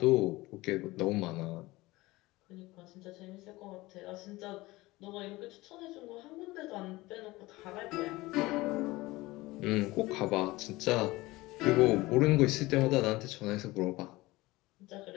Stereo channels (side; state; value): right; quieter; 20.1 dB